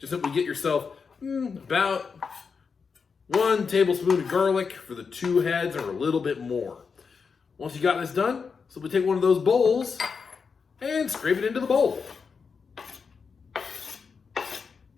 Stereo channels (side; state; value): right; quieter; 5.5 dB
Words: simply get yourself about 1 tablespoon of garlic for the 2 heads or a little bit more. Once you got this done, so we take one of those bowls and scrape it into the bowl.